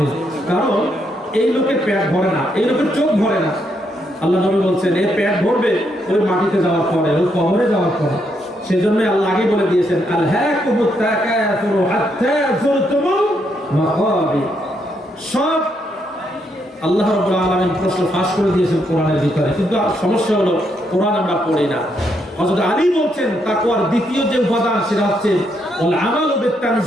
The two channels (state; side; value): normal; both; correlation 0.77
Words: কারণ এই লোকের পেট ভরে না, এই লোকের চোখ ভরে না। আল্লাহ নবী বলছেন এর পেট ভরবে ওই মাটিতে যাওয়ার পরে, ওই কবরে যাওয়ার পরে। সেজন্য আল্লাহ আগে বলে দিয়েছেন আলহাকুমুত তাকাসুর হাত্তা যুরতুমুল মাকাবির। সব আল্লাহ রাব্বুল আলামিন প্রশ্ন ফাঁস করে দিয়েছেন কোরআনের ভিতরে, কিন্তু সমস্যা হলো কোরআন আমরা পড়ি না। হযরত আলী বলছেন তাকওয়ার দ্বিতীয় যে উপাদান সেটা হচ্ছে ওয়াল আমালু